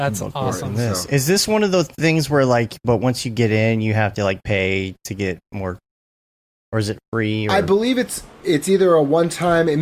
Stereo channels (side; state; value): both; identical; correlation 1.00